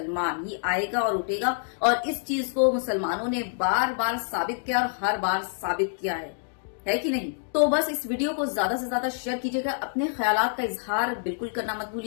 ही आएगा और उठेगा। और इस चीज को मुसलमानों ने बार बार साबित किया और हर बार साबित किया है कि नहीं। तो बस इस वीडियो को ज्यादा से ज्यादा शेयर कीजिएगा, अपने ख्यालात का इजहार बिल्कुल करना मत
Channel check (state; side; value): silent; right; digital silence